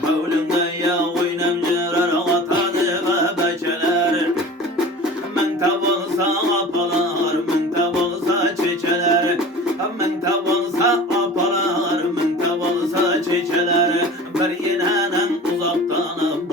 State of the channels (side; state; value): both; normal; correlation 0.39